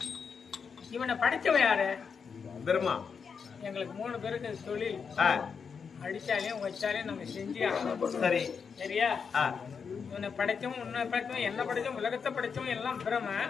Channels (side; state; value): right; quieter; 6.1 dB